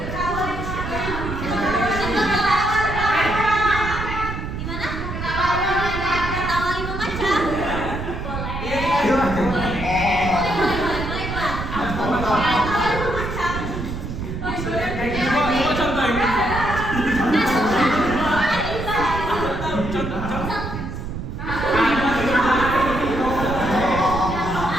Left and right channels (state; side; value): noise; right; rumble, 6 dB below the sound